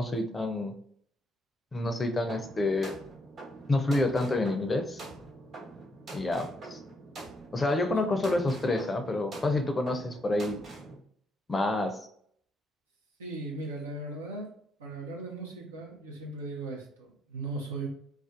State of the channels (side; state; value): both; normal; correlation 0.76